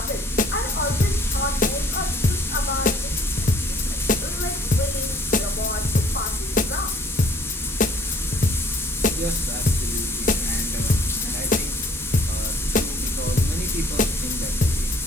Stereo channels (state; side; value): normal; both; correlation 0.58